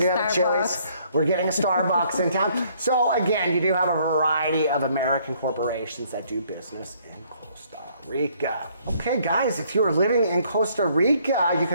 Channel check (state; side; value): inverted; both; correlation -0.64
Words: have Chili's. We're getting a Starbucks in town. So again, you do have a variety of American corporations that do business in Costa Rica. Okay, guys, if you are living in Costa Rica, you